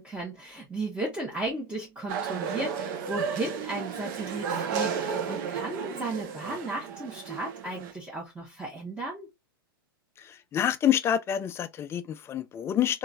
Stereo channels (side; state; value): both; normal; correlation 0.33